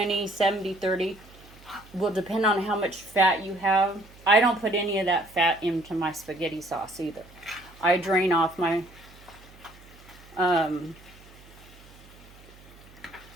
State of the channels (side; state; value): right; noise; hum, 23 dB below the sound